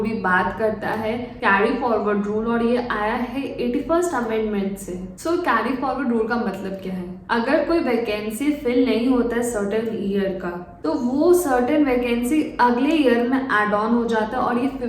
बात करता है carry forward rule और ये आया है 81st amendment से। So carry forward rule का मतलब क्या है? अगर कोई वैकेंसी फिल नहीं होता है सर्टेन ईयर का, तो वो सर्टेन वैकेंसी अगले ईयर में एड ऑन हो जाता है और ये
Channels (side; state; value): both; identical; correlation 1.00